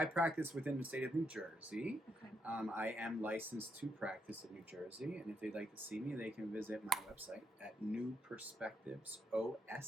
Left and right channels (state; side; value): normal; both; correlation 0.78